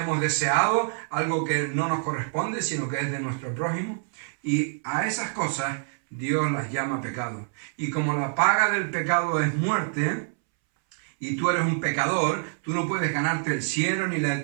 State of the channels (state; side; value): silent; left; 61 dB below the other